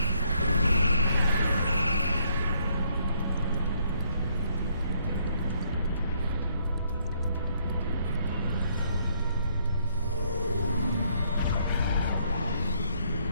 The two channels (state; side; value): inverted; both; correlation -0.70